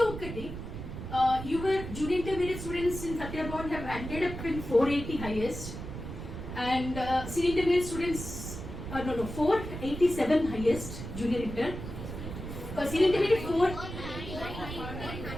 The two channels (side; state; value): right; noise; rumble, 8 dB below the sound